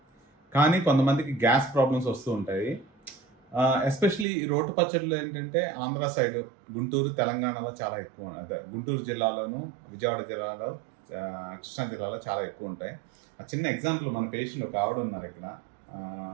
కానీ కొంతమందికి గ్యాస్ ప్రాబ్లమ్స్ వస్తూ ఉంటాయి. ఎస్పెషలీ ఈ రోటి పచ్చళ్ళు ఏంటంటే ఆంధ్ర సైడ్, గుంటూరు, తెలంగాణలో చాలా ఎక్కువ, అదే గుంటూరు జిల్లాలోను, విజయవాడ జిల్లాలో, కృష్ణా జిల్లాలో చాలా ఎక్కువ ఉంటాయి. ఆ చిన్న ఎగ్జాంపుల్, మన పేషెంట్ ఒక ఆవిడ ఉన్నారు ఇక్కడ,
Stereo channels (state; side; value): drops out; left; at 4.2 s